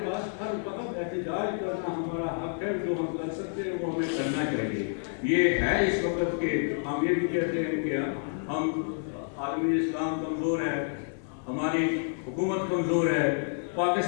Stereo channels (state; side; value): silent; right; 58 dB below the other